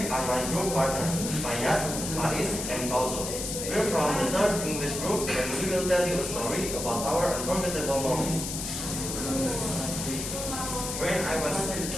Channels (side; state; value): left; noise; hiss, 5 dB below the sound